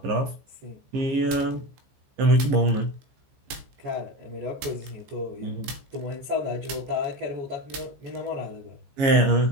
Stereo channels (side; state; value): left; late; 15 ms